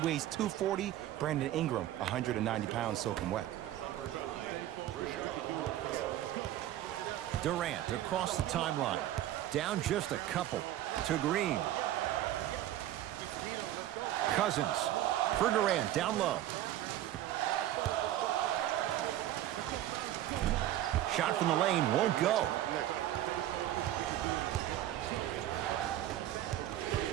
weighs 240, Brandon Ingram 190 pounds soaking wet. Durant across the timeline, down just a couple to Green. Cousins for Durant, down low. Shot from the lane, won't go.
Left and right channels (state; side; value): quieter; left; 13.2 dB